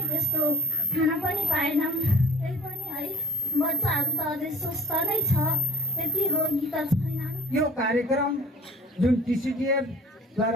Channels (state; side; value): normal; both; correlation 0.46